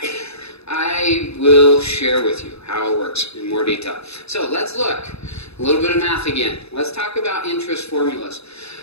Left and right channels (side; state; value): right; late; 0.79 ms